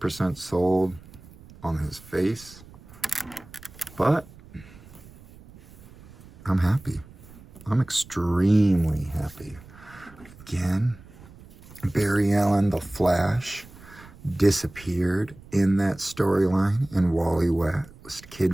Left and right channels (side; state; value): right; noise; rumble, 21 dB below the sound